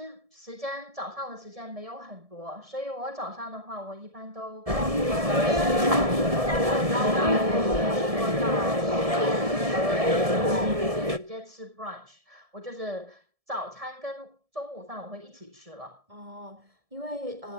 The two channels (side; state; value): left; late; 1.7 ms